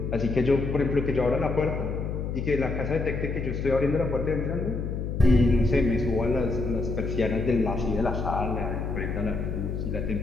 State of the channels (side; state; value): left; noise; hum, 3 dB below the sound